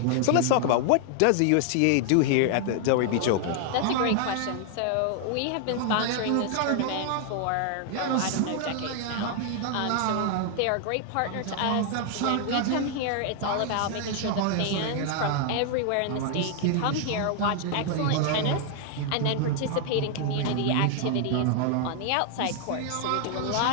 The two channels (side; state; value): both; different; correlation 0.00